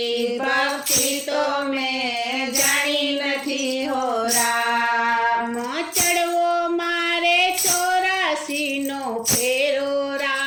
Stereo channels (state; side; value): identical; both; correlation 1.00